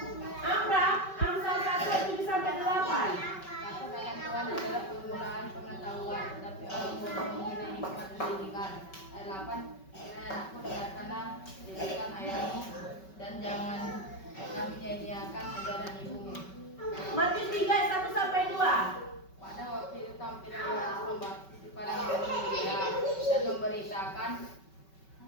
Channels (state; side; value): late; right; 5.3 ms